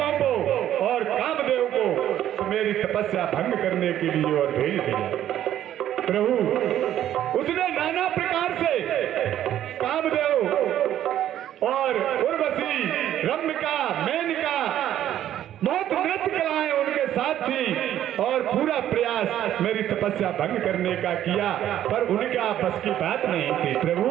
को और कामदेव को मेरी तपस्या भंग करने के लिए और भेज दिया। प्रभु उसने नाना प्रकार से कामदेव और उर्वशी, रम्यका, मेनका, बहुत नृत्य कलाएं उनके साथ थी और पूरा प्रयास मेरी तपस्या भंग करने का किया, पर उनका बस की बात नहीं थी प्रभु।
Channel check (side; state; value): left; quieter; 11.6 dB